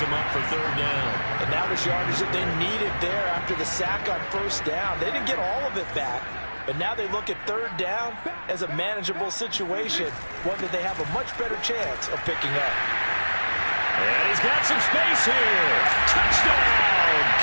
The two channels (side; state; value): both; inverted; correlation -1.00